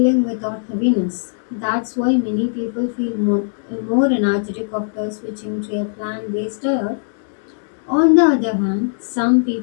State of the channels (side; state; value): right; silent; digital silence